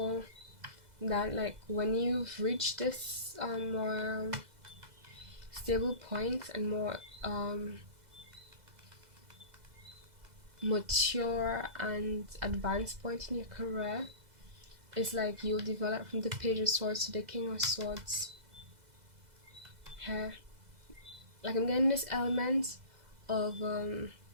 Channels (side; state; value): left; late; 2.0 ms